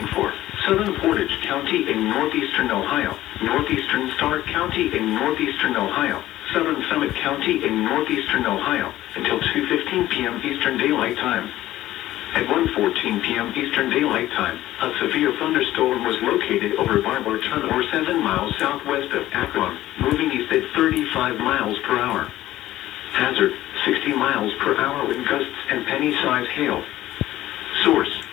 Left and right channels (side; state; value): right; quieter; 14.8 dB